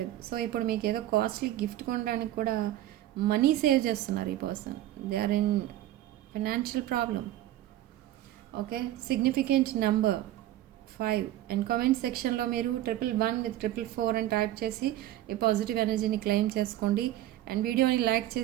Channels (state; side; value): quieter; left; 13.8 dB